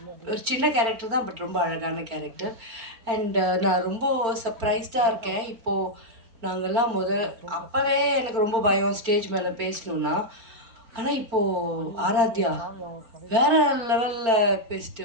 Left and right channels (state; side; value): late; left; 4.4 ms